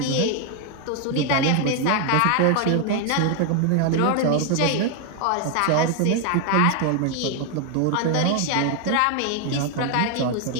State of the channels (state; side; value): different; both; correlation 0.00